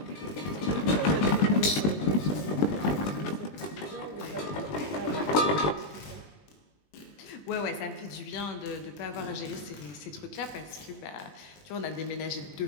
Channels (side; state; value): right; late; 20 ms